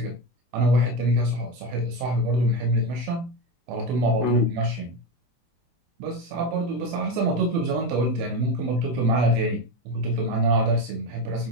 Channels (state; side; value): late; left; 24 ms